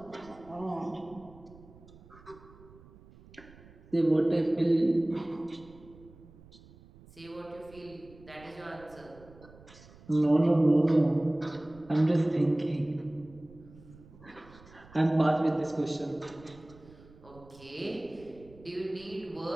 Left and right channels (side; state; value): right; noise; rumble, 23 dB below the sound